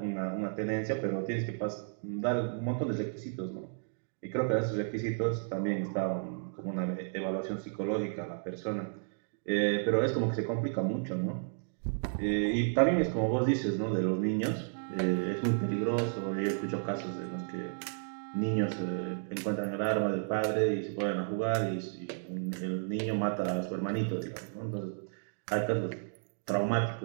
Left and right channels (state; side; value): silent; left; digital silence